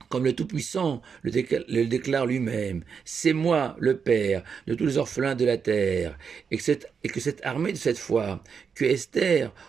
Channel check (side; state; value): left; quieter; 6.3 dB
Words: comme le Tout-Puissant le déclare lui-même, c'est moi, le Père, de tous les orphelins de la terre, et que cette armée de cette foi, que Esther,